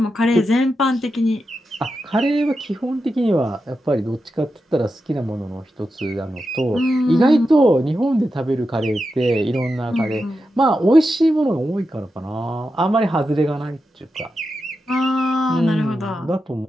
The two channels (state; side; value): normal; both; correlation 0.89